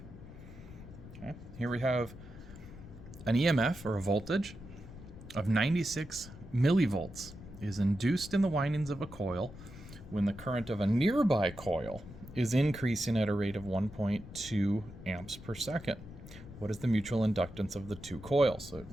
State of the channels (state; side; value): noise; left; rumble, 15 dB below the sound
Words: Okay, here we have an EMF, or a voltage, of 96 millivolts is induced in the windings of a coil when the current of a nearby coil is increasing at a rate of 1.2 amps per second. What is the mutual inductance of the two coils? So it